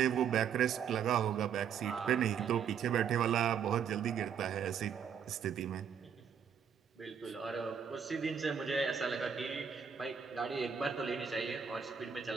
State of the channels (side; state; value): left; quieter; 7.5 dB